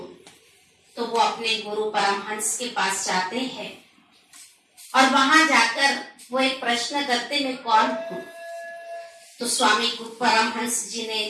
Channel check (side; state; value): both; identical; correlation 1.00